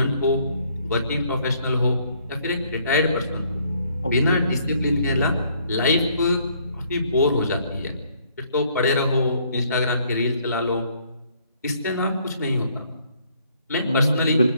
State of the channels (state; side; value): inverted; both; correlation -0.65